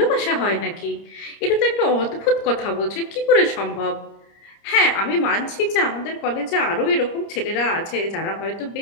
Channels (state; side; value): late; right; 30 ms